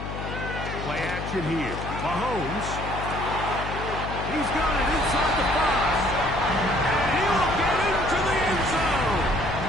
Play action here. Mahomes. He's got it inside the 5. And he'll get into the end zone.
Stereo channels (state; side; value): noise; left; hum, 7 dB below the sound